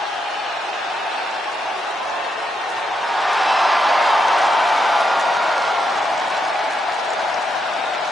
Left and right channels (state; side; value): normal; both; correlation 0.81